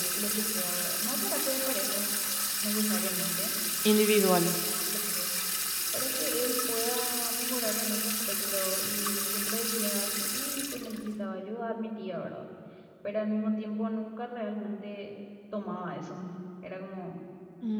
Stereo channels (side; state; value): both; identical; correlation 1.00